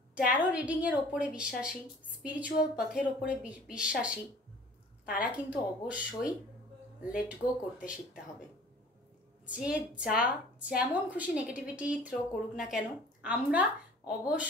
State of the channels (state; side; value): normal; both; correlation 0.48